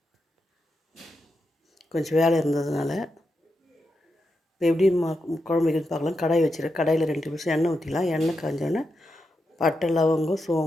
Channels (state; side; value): normal; both; correlation 0.86